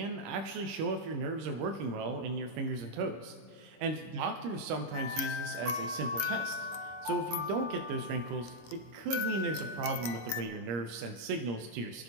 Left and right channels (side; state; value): left; late; 25 ms